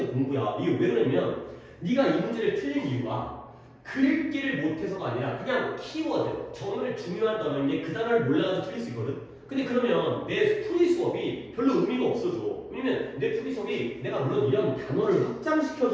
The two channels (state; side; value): identical; both; correlation 1.00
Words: 공부야. 이게 왜 그러냐면 네가 이 문제를 틀린 이유가 글귀를 못해서가 아니라 그냥 키워드, 정말 중요한 단어인데 그 단어를 몰라가지고 틀릴 수 있거든. 근데 그러면 내 풀이 수업이 별로 의미가 없어져. 왜냐면 내 풀이 수업이 내가 물론 이런 단어를